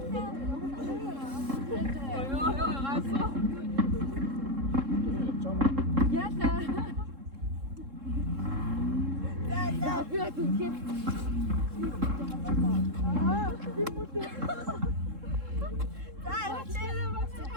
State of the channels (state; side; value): late; left; 3.7 ms